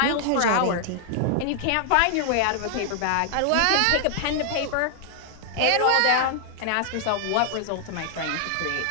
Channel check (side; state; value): both; different; correlation 0.00